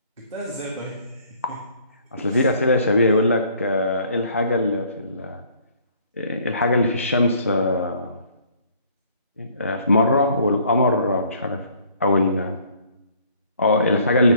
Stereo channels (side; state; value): both; inverted; correlation -0.60